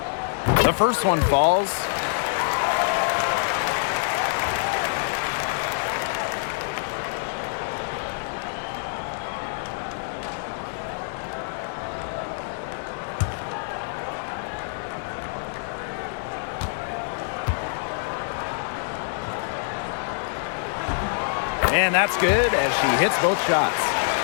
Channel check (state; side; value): silent; right; digital silence